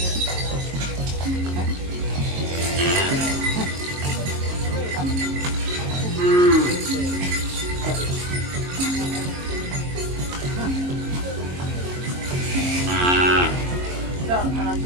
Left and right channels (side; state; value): left; late; 22 ms